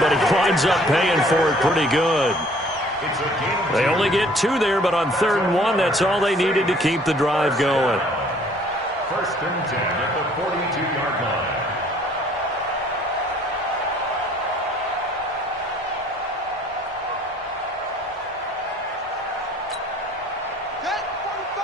he winds up paying for it pretty good. They only get 2 there, but on 3rd and 1, that's all they needed to keep the drive going. 1st and 10 at the 42-yard line.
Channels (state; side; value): normal; both; correlation 0.57